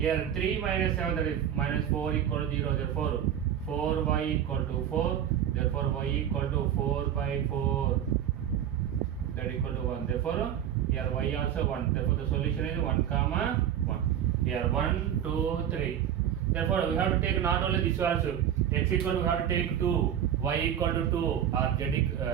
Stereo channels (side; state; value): left; quieter; 9.9 dB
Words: 3 minus 7, that is minus 4 equal to 0. Therefore, 4y equal to 4. Therefore, y equal to 4 by 4. That equal to 1. Therefore, here y also 1. Therefore, the solution is 1 comma 1. Here 1, 2, 3. Therefore, we have to take not only this also. X equal to, we have to take 2. Y equal to 2. Or z